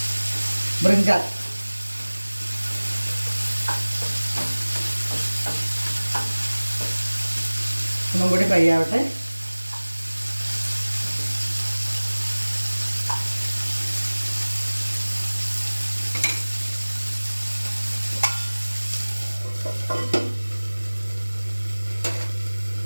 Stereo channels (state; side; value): inverted; both; correlation -1.00